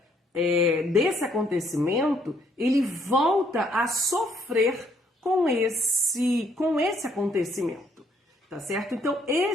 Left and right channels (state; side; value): normal; both; correlation 0.68